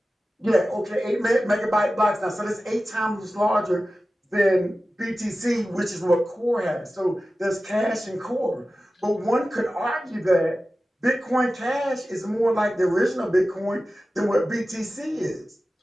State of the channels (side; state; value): both; normal; correlation 0.95